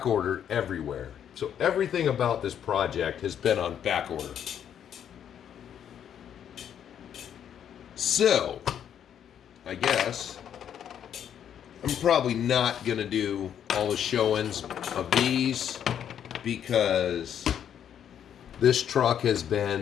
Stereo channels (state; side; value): quieter; right; 9.2 dB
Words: ordered everywhere. So everything about this project has been on back order. So I guess I'm probably not going to do all the showings of these, because this truck has